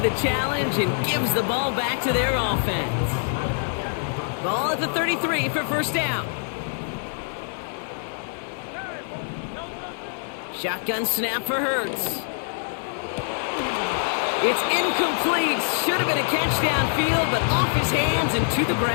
challenge and gives the ball back to their offense. Ball at the 33 for 1st down. Shotgun snap for Hurts. It's incomplete. Should have been a catch downfield, but off his hands and to the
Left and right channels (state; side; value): silent; right; 62 dB below the other